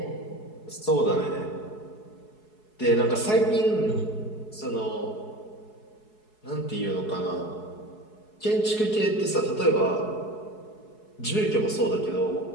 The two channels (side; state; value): right; late; 4.7 ms